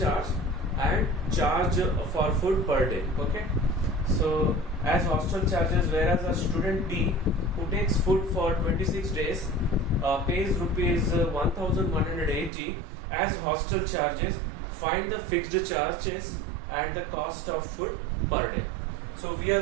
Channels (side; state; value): left; drops out; at 12.5 s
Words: charge and charge for food per day. Okay. So as hostel charges, whereas a student B who takes food for 26 days pays rupees 1180 as hostel charges, find the fixed charges and the cost of food per day. So we